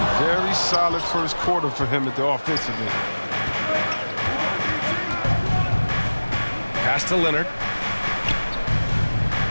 very solid first quarter for him at the offensive end. Pass to Leonard.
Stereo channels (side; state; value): both; inverted; correlation -1.00